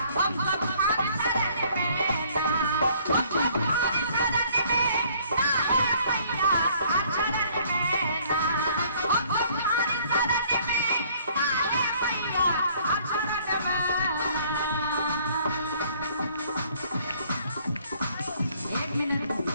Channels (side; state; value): both; inverted; correlation -0.60